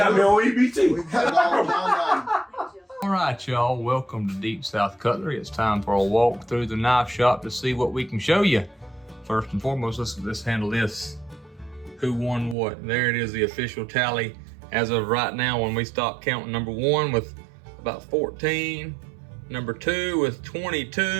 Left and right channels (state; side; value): drops out; left; at 12.6 s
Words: me on EBT. We got it all down. All right, y'all. Welcome to Deep South Cutlery. It's time for a walk through the knife shop to see what we can show you. First and foremost, let's handle this. Who won what? There it is, the official tally as of right now. When we stop counting, number 1 with about 14, number 2 with